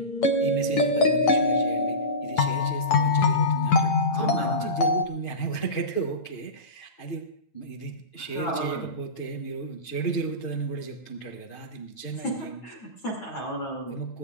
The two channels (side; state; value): right; late; 8.9 ms